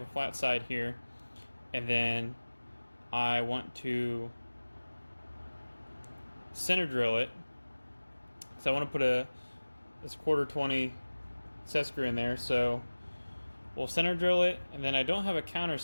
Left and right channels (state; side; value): inverted; both; correlation -1.00